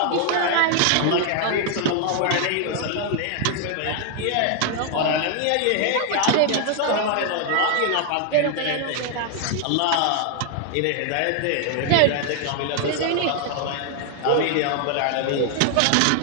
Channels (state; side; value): different; both; correlation 0.00